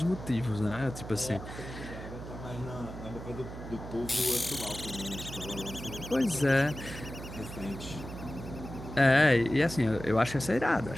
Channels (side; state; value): right; noise; hum, 10 dB below the sound